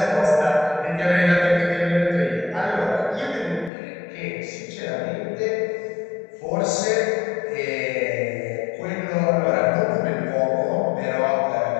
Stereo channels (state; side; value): drops out; right; at 3.7 s